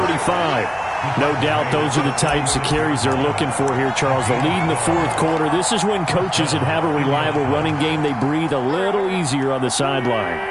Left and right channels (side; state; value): both; identical; correlation 1.00